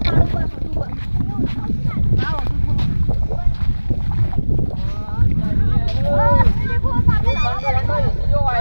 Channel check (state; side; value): inverted; both; correlation -1.00